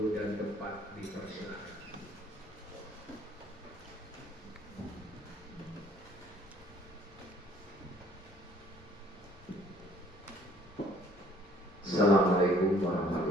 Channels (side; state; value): both; normal; correlation 0.59